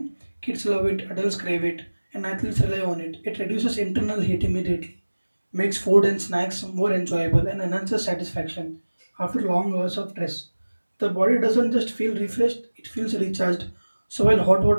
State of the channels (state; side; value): inverted; both; correlation -1.00